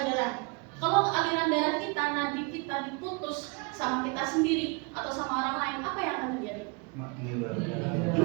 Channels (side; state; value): left; quieter; 30.3 dB